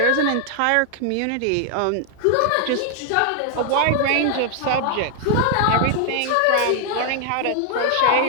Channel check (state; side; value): different; both; correlation 0.00